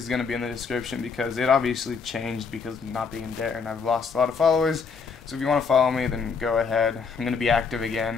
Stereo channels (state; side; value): quieter; right; 5.4 dB